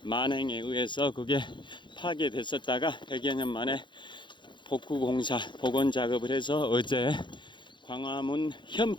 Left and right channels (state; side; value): late; right; 0.23 ms